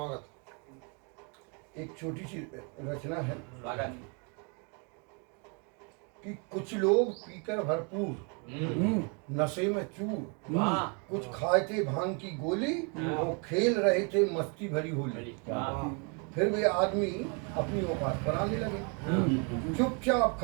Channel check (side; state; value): left; quieter; 35.9 dB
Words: एक छोटी सी रचना है कि कुछ लोग पीकर भरपूर, नशे में चूर, कुछ खाए थे भांग की गोली, वो खेल रहे थे मस्ती भरी होली। फिर वे आदमी अपनी औकात पर आने लगे, चुपचाप